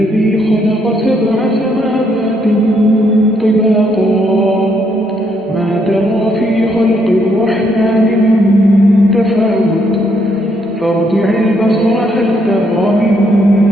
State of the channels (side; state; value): both; normal; correlation 0.73